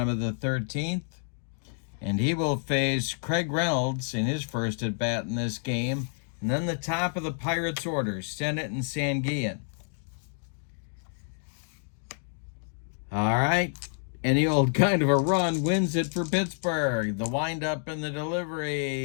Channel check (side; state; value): right; silent; 59 dB below the other